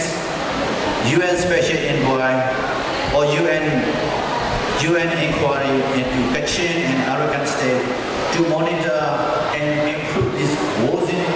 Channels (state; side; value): identical; both; correlation 1.00